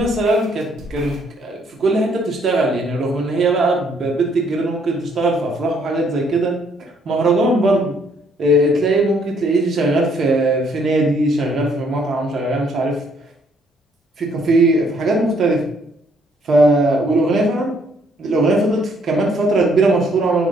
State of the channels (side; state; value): both; normal; correlation 0.67